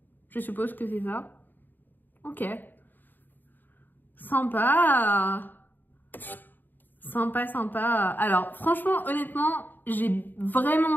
Je suppose que c'est ça. Ok. Sympa. Sympa, sympa. Alors, franchement, honnêtement, j'ai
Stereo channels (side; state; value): right; late; 0.090 ms